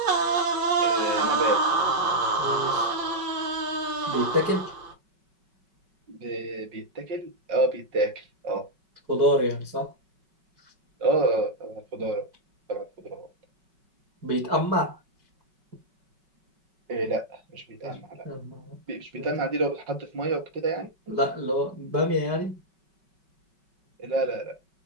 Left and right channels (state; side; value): late; left; 5.3 ms